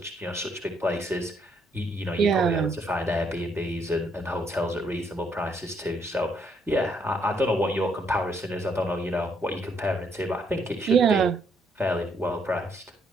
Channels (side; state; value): both; normal; correlation 0.71